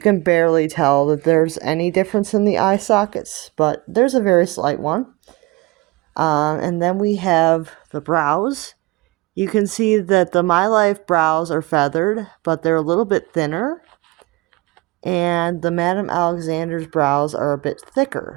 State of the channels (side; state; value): left; quieter; 22.9 dB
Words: can barely tell that there's any difference in the eye sockets, but there's a very slight one. And then we have the brows. You can see that the My Life brows are feathered, but they're a little bit thinner. And the Madame Alexander's brows are a bit thicker.